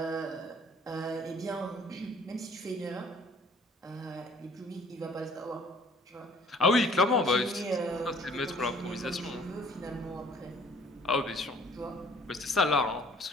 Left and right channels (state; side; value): normal; both; correlation 0.55